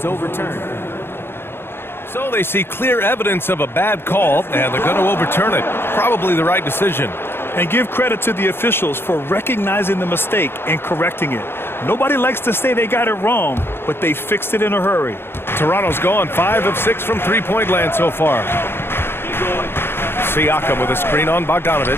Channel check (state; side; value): late; right; 0.11 ms